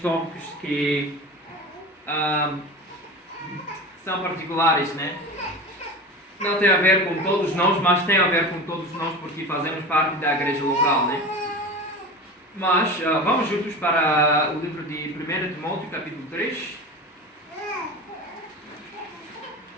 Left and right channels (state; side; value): normal; both; correlation 0.30